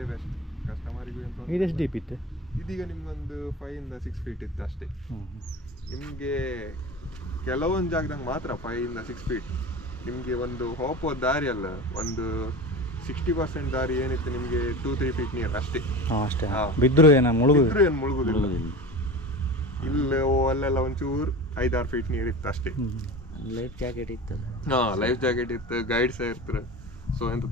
ಬೆಸ್ಟ್ ಕಸ್ಟಮರಿಗೂ ಅಂತ. ಇದೆಷ್ಟು ಡೀಪ್ ಇತ್ತು? ಇದೀಗ ನಿಮ್ಗೊಂದು 5 ಇಂದ 6 ಫೀಟ್ ಇತ್ತು ಅಷ್ಟೇ. ನಿಮಗೆ ಕೆಲವೊಂದು ಜಾಗದಾಗ ಮಾತ್ರ 5 ಇಂದ 6 ಫೀಟ್. ನಿಮಗೆ ಒಂದು ಹೋಗುವ ದಾರಿ ಅಲ್ಲ, ಒಂದು 60% ದಾರಿ ಏನಿತ್ತು ನಿಮಗೆ 2-3 ಫೀಟ್ ನೀರು ಅಷ್ಟೇ. ಅಷ್ಟೇ. ಹಾಂ. ಬಿದ್ದರೂ ಏನು ಮುಳುಗು? ಏನು ಮುಳುಗುದಿಲ್ಲ. ಇಲ್ಲ ಅಲ್ಲೆಲ್ಲ ಒಂಚೂರು 5-6 ಫೀಟ್ ನೀರು ಇತ್ತು ಅಷ್ಟೇ. ಲೈಫ್ ಜಾಕೆಟ್ ಇತ್ತಲ್ಲ. ಹಾಂ, ಲೈಫ್ ಜಾಕೆಟ್ ಇತ್ತು, ಗೈಡ್ ಸಹ ಇರ್ತಾರೆ. ಸೊ ಎಂತ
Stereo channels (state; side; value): normal; both; correlation 0.31